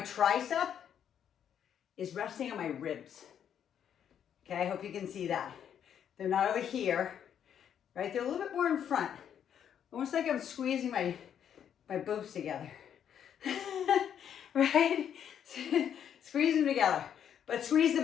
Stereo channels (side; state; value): right; quieter; 9.0 dB